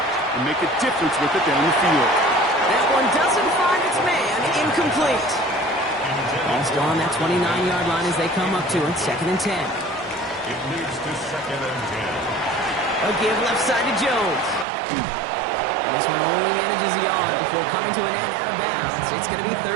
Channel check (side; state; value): left; drops out; at 14.7 s